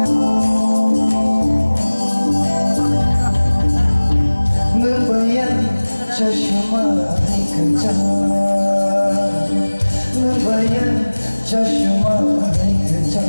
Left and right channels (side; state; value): both; inverted; correlation -1.00